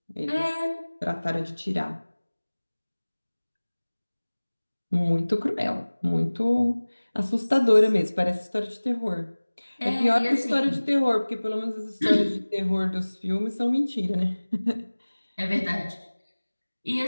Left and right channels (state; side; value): inverted; both; correlation -1.00